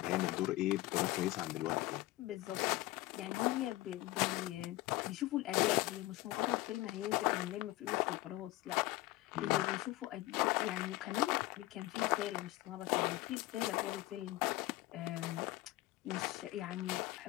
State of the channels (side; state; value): right; quieter; 18.3 dB